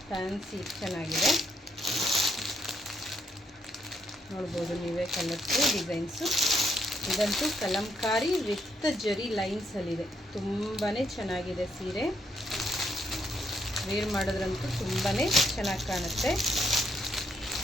ಫ್ಯಾನ್ಸಿ ಚೆನ್ನಾಗಿದೆ. ನೋಡ್ಬೋದು ನೀವೇ ಕಲರ್ಸು ಡಿಸೈನ್ಸು. ಇದಂತೂ ಕಲಂಕಾರಿ ವಿತ್ ಜರಿ ಲೈನ್ಸಲ್ಲಿದೆ. ತುಂಬಾ ಚೆನ್ನಾಗಿದೆ ಸೀರೆ. ವೇರ್ ಮಾಡೋದ್ರಂತೂ ತುಂಬಾ ಚೆನ್ನಾಗಿ ಕಾಣುತ್ತೆ.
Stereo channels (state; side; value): normal; both; correlation 0.74